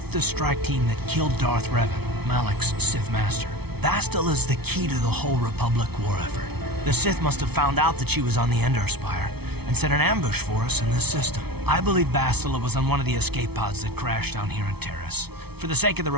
the strike team that killed Darth Revan, Malak's Sith master. Bastila's the key to the whole Republic war effort. The Sith must have found out that she was on the Endar spire and set an ambush for us in this system. I believe Bastila was on one of the escape pods that crashed down here in Taris. For the sake of the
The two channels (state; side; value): late; left; 0.98 ms